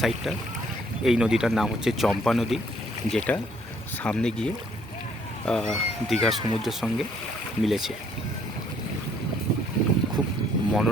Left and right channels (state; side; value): normal; both; correlation 0.65